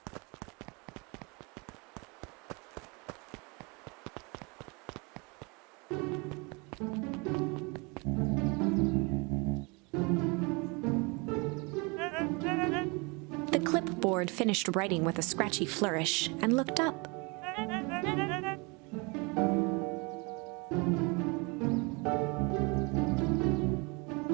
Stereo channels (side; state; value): left; quieter; 29.1 dB